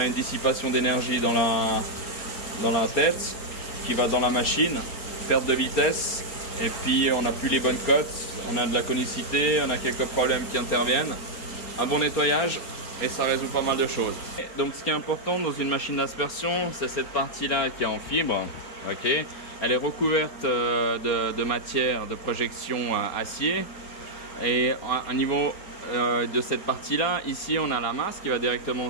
une dissipation d'énergie dans la tête, qui va dans la machine, perte de vitesse, et puis on n'a plus les bonnes cotes, on a de la conicité, on a quelques problèmes qui interviennent. Un bon nettoyage, et ça résout pas mal de choses. Donc ce qui est important dans une machine d'aspersion, c'est cette partie-là qui est en fibre. Okay. Elle est recouverte de matière de projection acier. Et au niveau de cette partie-là, ici on a la masse qui va directement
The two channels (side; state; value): right; late; 4.3 ms